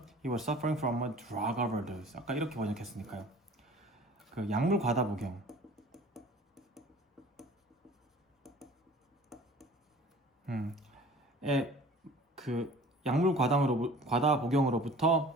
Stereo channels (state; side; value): normal; both; correlation 0.46